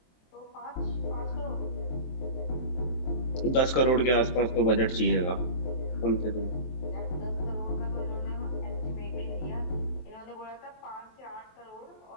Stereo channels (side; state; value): right; late; 23 ms